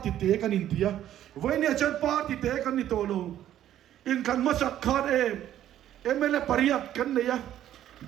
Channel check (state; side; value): quieter; left; 11.8 dB